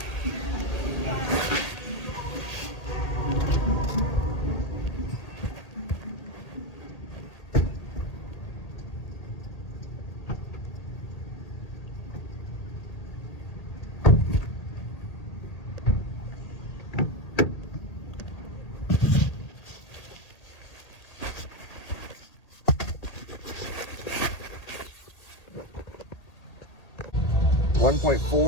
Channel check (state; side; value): late; right; 1.8 ms